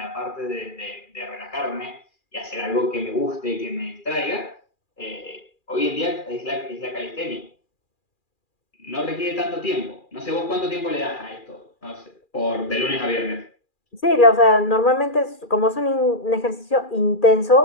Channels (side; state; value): right; late; 2.4 ms